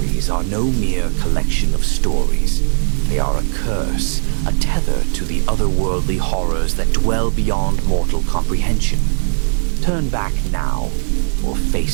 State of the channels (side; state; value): left; silent; 68 dB below the other